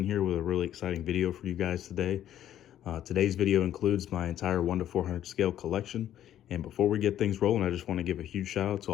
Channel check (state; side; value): quieter; right; 11.5 dB